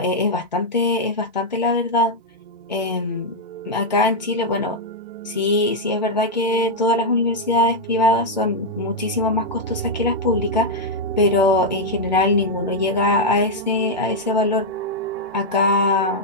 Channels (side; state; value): both; normal; correlation -0.02